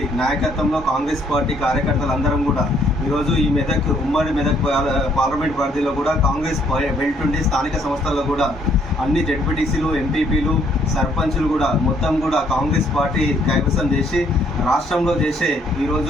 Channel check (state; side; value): normal; both; correlation 0.66